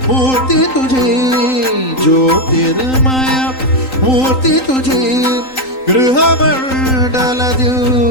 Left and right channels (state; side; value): late; right; 3.9 ms